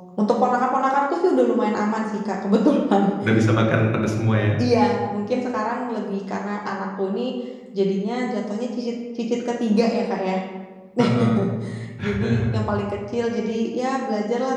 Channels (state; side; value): identical; both; correlation 1.00